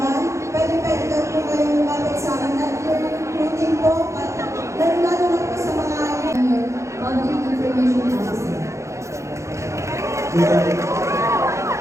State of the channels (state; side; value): late; left; 0.14 ms